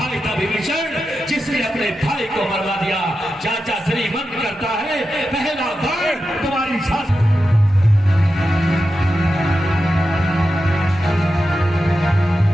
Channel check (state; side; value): normal; both; correlation 0.90